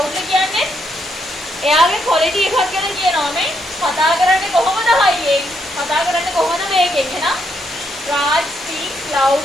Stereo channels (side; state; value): both; normal; correlation 0.76